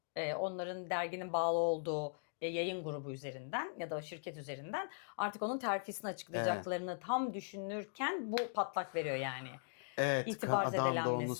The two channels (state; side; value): silent; right; digital silence